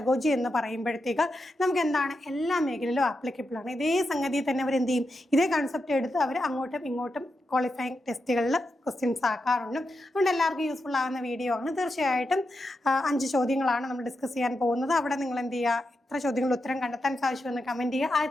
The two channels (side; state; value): both; normal; correlation 0.87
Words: എന്ന് പറയുമ്പോഴത്തേക്ക് നമുക്ക് എന്താണ് എല്ലാ മേഖലയിലും ആപ്ലിക്കബിൾ ആണ്. ഇതേ സംഗതി തന്നെ അവർ എന്ത് ചെയ്യും, ഇതേ കൺസെപ്റ്റ് എടുത്ത് അവർ അങ്ങോട്ടും ഇങ്ങോട്ടും ക്വാളിഫയിങ് ടെസ്റ്റുകളിൽ ക്വസ്റ്റ്യൻസ് ആക്കാറുണ്ട്. അതുകൊണ്ട് എല്ലാവർക്കും യൂസ്ഫുൾ ആകുന്ന വീഡിയോ ആണ്. തീർച്ചയായിട്ടും 5 ചോദ്യങ്ങളാണ് നമ്മൾ ഡിസ്കസ് ചെയ്യാൻ പോകുന്നത്. അവിടെ നിങ്ങൾ എന്ത് ചെയ്യുക, എത്ര ചോദ്യങ്ങൾ ഉത്തരം കണ്ടെത്താൻ സാധിച്ചുവെന്ന് കമന്റ് ചെയ്യുക.